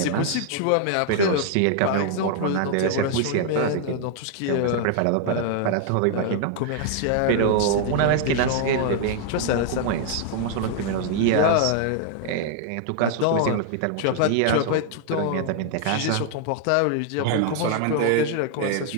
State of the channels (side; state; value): both; different; correlation 0.00